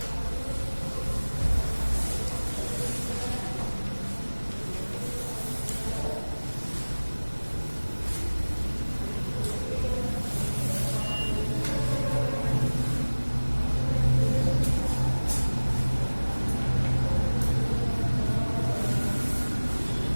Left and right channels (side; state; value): both; inverted; correlation -1.00